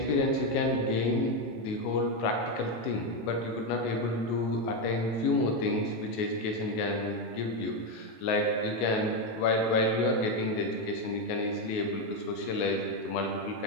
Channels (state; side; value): late; right; 19 ms